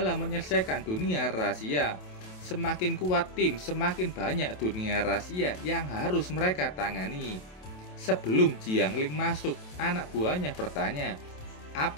menyelesaikan dunia rahasia. Semakin kuat tim, semakin banyak dunia rahasia yang harus mereka tangani. Sebelum Jiang Ling masuk, anak buahnya bertanya,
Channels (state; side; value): late; right; 27 ms